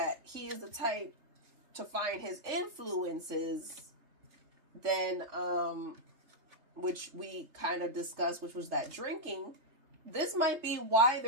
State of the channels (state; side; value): late; left; 3.3 ms